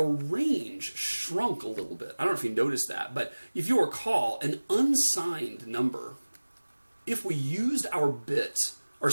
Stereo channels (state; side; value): inverted; both; correlation -1.00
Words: range shrunk a little bit. I don't know if you noticed that, but if you recall, an unsigned number, if we used our byte,